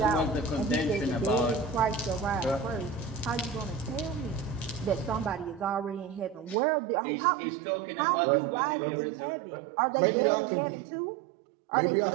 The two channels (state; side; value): drops out; left; at 6.6 s